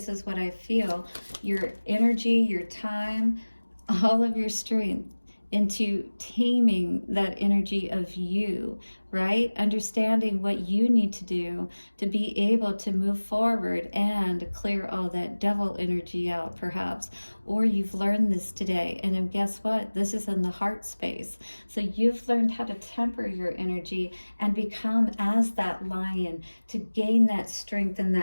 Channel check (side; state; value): both; inverted; correlation -1.00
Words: is what I feel, your energy, your time, all of your strength into taming that energy of you, right? Understanding what you need to do to be able to move forward and clear all that devil energy out, perhaps. Or you've learned this today, and then guess what? This is in the heart space. So you've learned how to temper your energy and become as that lion to gain that strength and